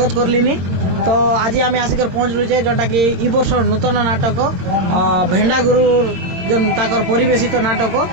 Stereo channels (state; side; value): late; left; 22 ms